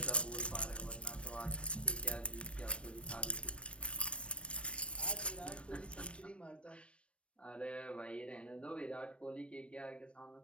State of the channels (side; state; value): right; late; 0.060 ms